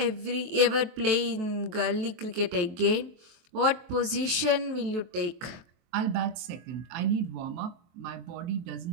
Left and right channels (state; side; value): late; left; 23 ms